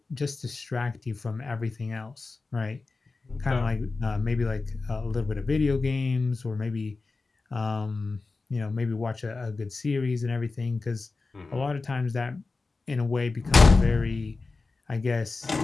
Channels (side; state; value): right; quieter; 3.8 dB